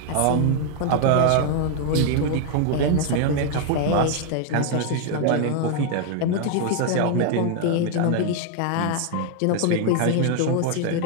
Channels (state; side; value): different; both; correlation 0.00